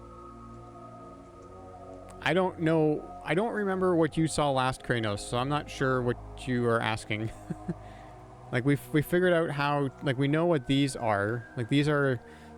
I don't know. I don't remember what you saw last, Kranos, so I'm not sure what you are asking. Like, we figured out how... Like, we know what these are. Like, these are...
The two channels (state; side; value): identical; both; correlation 1.00